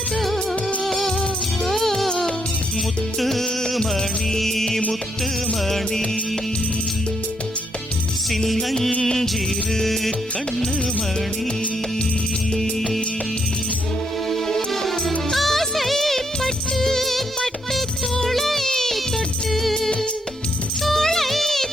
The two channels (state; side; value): normal; both; correlation 0.76